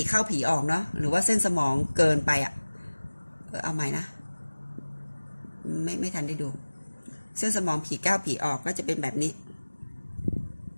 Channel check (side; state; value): both; inverted; correlation -1.00